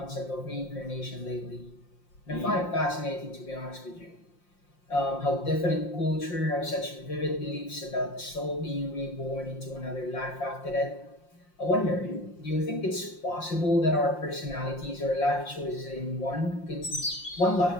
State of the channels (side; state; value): right; late; 5.7 ms